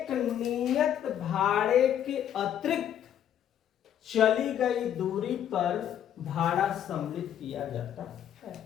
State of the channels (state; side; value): quieter; right; 10.1 dB